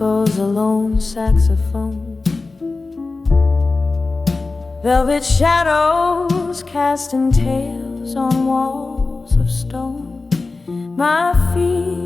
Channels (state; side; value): quieter; right; 3.7 dB